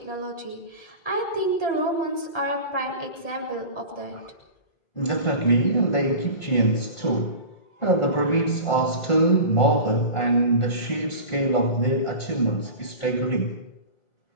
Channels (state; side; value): late; right; 1.4 ms